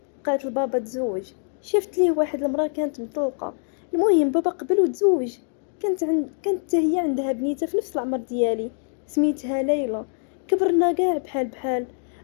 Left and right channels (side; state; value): right; silent; 62 dB below the other